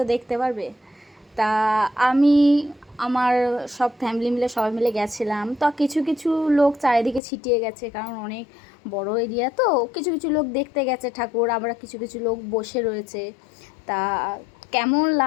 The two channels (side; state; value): right; drops out; at 7.2 s